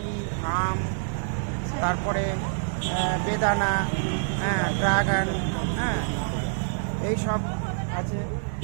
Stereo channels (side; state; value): left; silent; digital silence